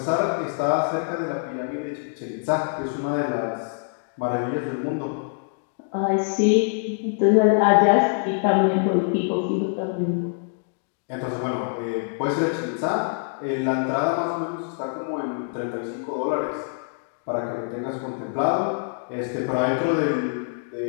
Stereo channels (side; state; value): right; silent; digital silence